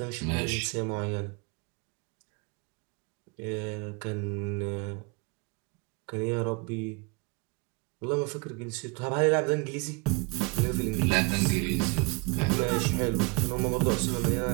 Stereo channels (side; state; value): left; quieter; 27.9 dB